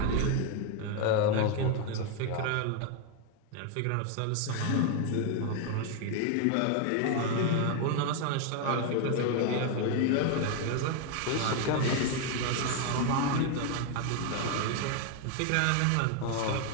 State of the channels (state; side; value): different; both; correlation 0.01